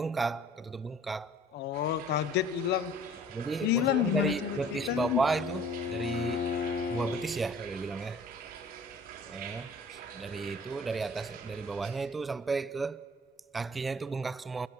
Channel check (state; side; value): normal; both; correlation 0.52